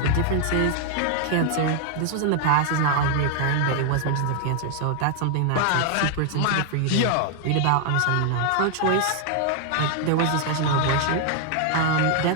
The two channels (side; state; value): both; different; correlation 0.00